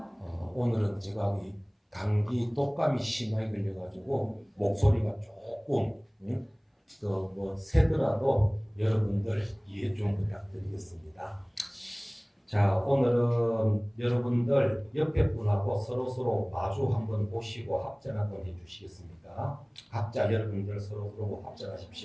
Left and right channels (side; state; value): both; identical; correlation 1.00